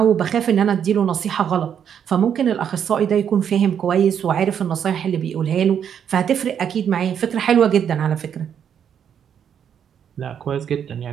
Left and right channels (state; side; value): quieter; left; 8.4 dB